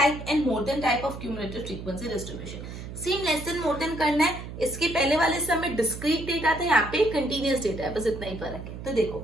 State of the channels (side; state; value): right; noise; hum, 10 dB below the sound